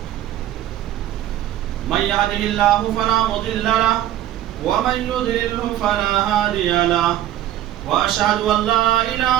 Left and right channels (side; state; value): left; quieter; 12.7 dB